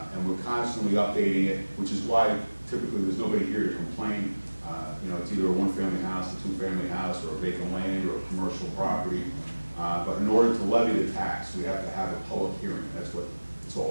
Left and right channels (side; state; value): both; inverted; correlation -1.00